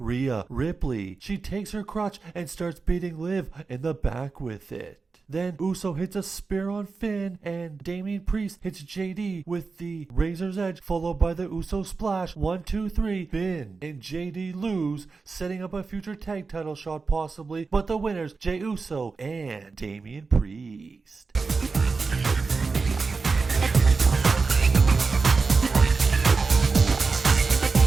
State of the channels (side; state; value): left; quieter; 4.4 dB